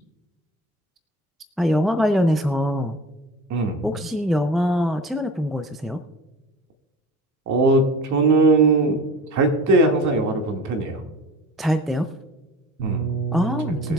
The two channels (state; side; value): normal; both; correlation 0.38